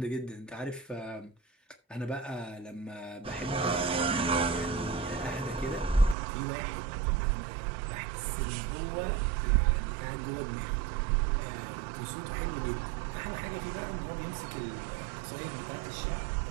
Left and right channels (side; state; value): left; drops out; at 6.2 s